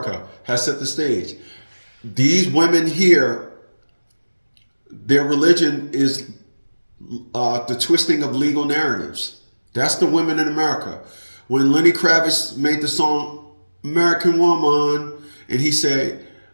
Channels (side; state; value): both; inverted; correlation -1.00